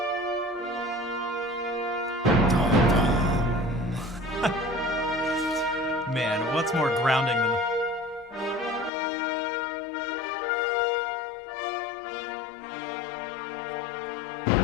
Man, what's more grounding than...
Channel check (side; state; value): right; drops out; at 8.9 s